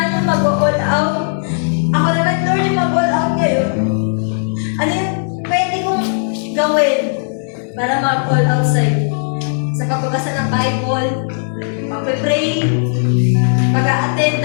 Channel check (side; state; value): right; silent; digital silence